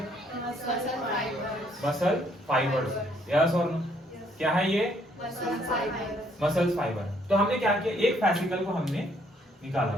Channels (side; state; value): both; normal; correlation 0.67